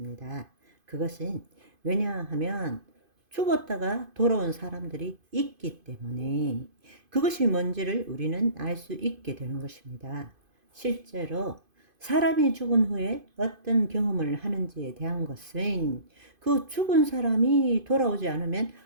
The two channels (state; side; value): late; left; 2.5 ms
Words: 그것은 왜냐하면 죽었다가 돌아온 사람들이 있기 때문에 그것이 뭔지를 우리는 알 수 있게 되는 것입니다. 실제로 사람이 죽은 후에 어떤 경험을 하는지에 대한 것은 그 죽은 사람이 돌아오지 않으면